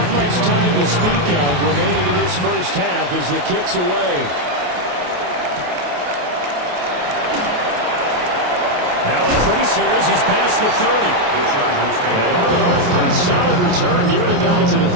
much time to speak of remaining in this first half as the kick's away. Now increase here as he's past the 30. And all in all, a pretty solid return. Nearly got it to the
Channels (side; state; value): left; late; 28 ms